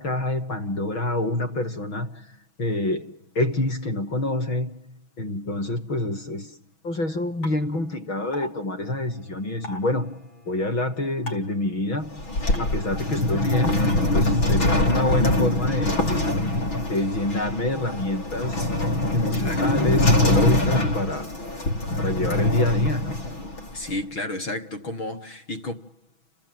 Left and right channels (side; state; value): right; late; 6.2 ms